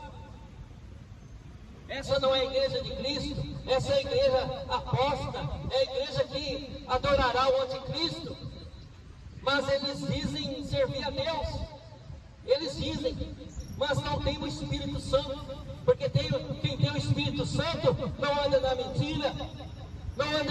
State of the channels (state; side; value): identical; both; correlation 1.00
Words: Essa não é a igreja de Cristo, essa é a igreja apóstata, é a igreja que adorará o anticristo. Mas eles dizem servir a Deus, eles dizem, mas não tem o Espírito Santo, porque quem tem o Espírito Santo não anda na mentira, não